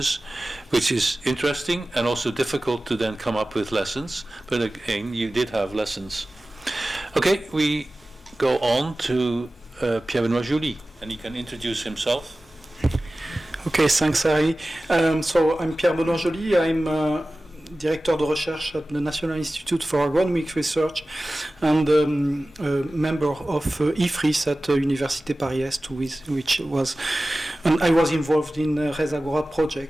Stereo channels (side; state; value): both; normal; correlation 0.96